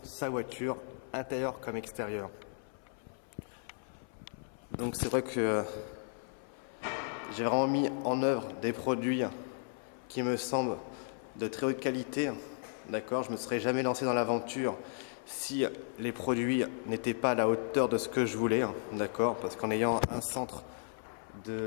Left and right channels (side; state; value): right; silent; 55 dB below the other